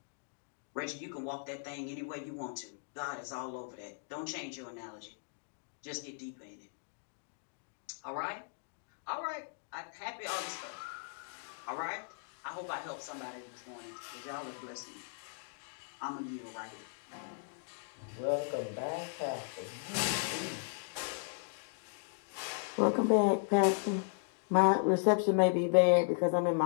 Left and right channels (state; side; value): silent; right; digital silence